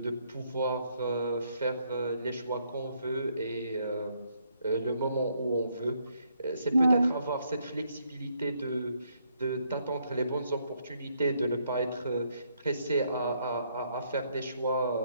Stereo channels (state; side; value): inverted; both; correlation -0.73